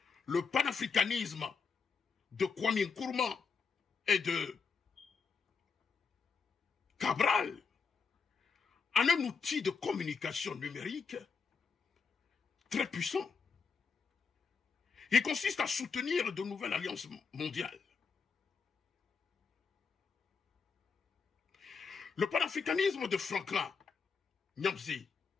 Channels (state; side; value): quieter; right; 5.4 dB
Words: le panafricanisme de Kwame Nkrumah et de Cabral en un outil de communication numérique très puissant. Il consiste à soutenir de nouvelles alliances mondiales. Le panafricanisme de Franklin Nyamsi